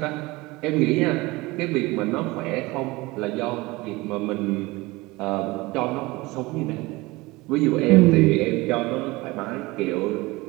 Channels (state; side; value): quieter; left; 21.9 dB